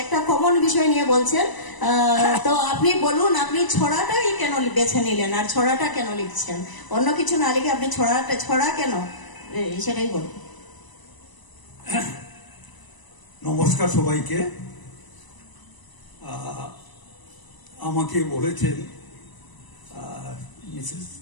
একটা কমন বিষয় নিয়ে বলছেন, তো আপনি বলুন আপনি ছড়াটাই কেন বেছে নিলেন আর ছড়াটা কেন লিখছেন? অন্য কিছু না লিখে আপনি ছড়া কেন, সেটাই বলুন। নমস্কার সবাইকে। আমাকে বলেছেন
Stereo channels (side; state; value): right; late; 1.0 ms